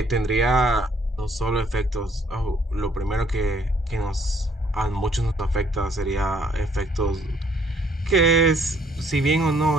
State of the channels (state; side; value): normal; both; correlation 0.64